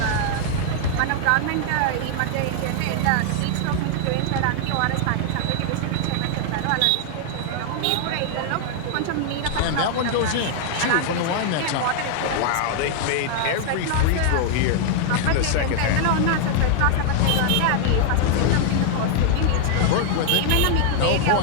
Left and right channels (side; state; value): both; different; correlation 0.00